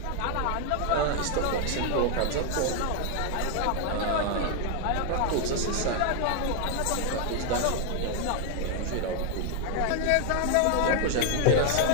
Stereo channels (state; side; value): different; both; correlation 0.00